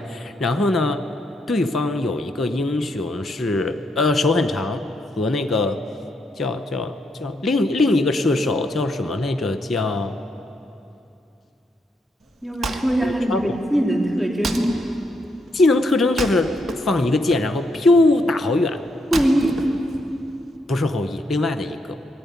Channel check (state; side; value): normal; both; correlation 0.78